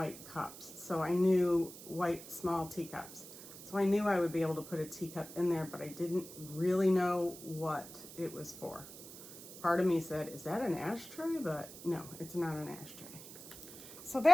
cups. So I knew white small teacups. So I knew I would be able to put a teacup in there, but I didn't really know what it was for. Part of me said, is that an ashtray? But no, it's not an ashtray. So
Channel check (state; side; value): noise; right; hiss, 14 dB below the sound